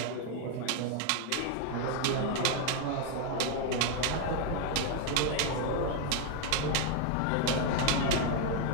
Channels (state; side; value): different; both; correlation 0.01